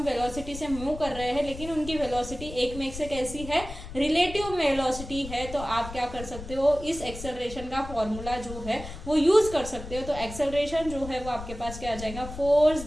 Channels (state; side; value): noise; left; rumble, 11 dB below the sound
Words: वेलोसिटी से मूव कर रहे हैं लेकिन उनकी वेलोसिटी एक में से कैसी है, रिलेटिव वेलोसिटी है, तो आप क्या कर सकते हो, इस एक्सेलरेशन का फॉर्मूला जो है वो यूज कर सकते हो। तो एक्सेलरेशन जो है वो आपके पास क्या आ जाएगा, force